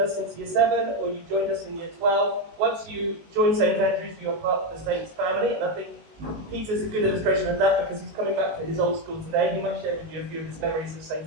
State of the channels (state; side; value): late; left; 19 ms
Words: since year 7 or you joined us in year 12, once you join St Andrews, you are part of the Saints family, and I think Peter's a good illustration of that because he's coming back to his old school today. He might share with you a few of his memories of St